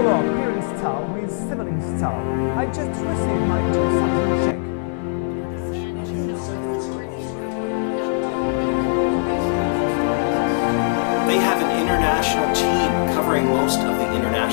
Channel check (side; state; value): right; silent; digital silence